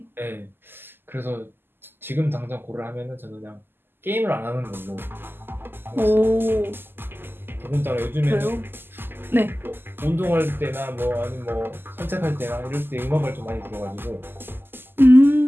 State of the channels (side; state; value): left; late; 0.099 ms